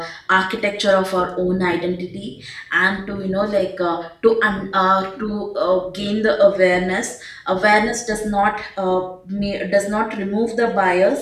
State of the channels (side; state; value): both; identical; correlation 1.00